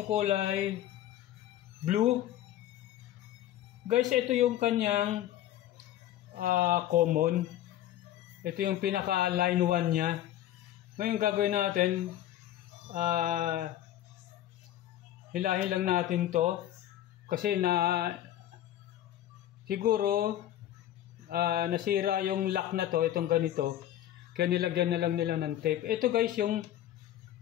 kulay blue. Guys, ito yung kanyang common. Ito yung pinaka line 1 niya. Ngayon gagawin natin, hilahin lang natin to kasi siguro nasira yung lock na to, itong ganito, kaya nilagyan na lang nila ng tape. Ito guys yung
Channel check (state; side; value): quieter; right; 12.6 dB